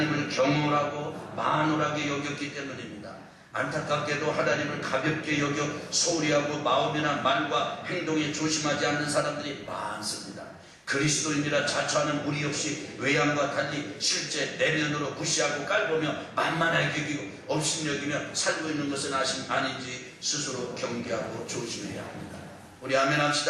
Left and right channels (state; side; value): identical; both; correlation 1.00